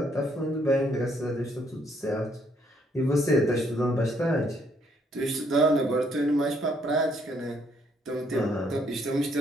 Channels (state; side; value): normal; both; correlation 0.70